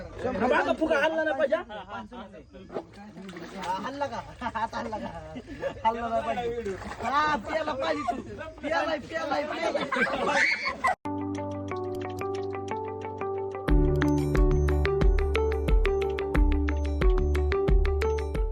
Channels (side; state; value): both; identical; correlation 1.00